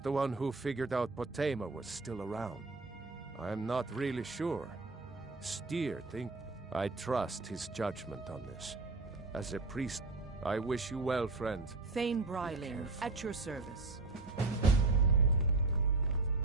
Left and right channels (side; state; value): left; quieter; 3.4 dB